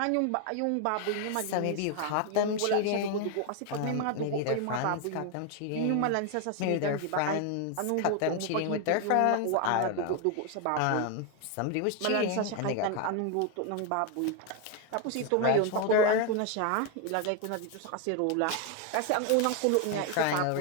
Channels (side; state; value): both; different; correlation 0.01